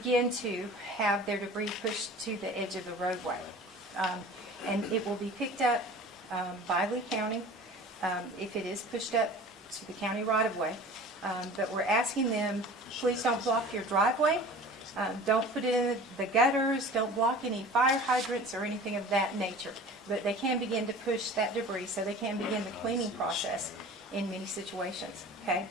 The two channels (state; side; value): normal; both; correlation 0.41